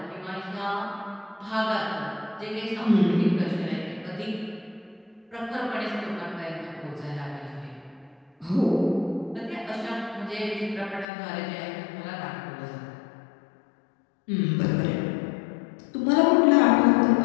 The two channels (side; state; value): right; drops out; at 11.1 s